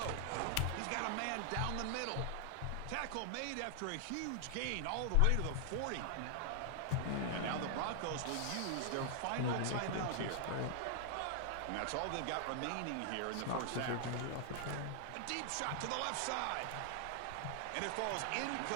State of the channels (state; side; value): different; both; correlation 0.00